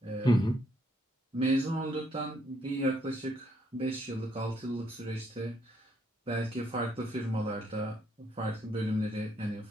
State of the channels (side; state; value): both; normal; correlation 0.72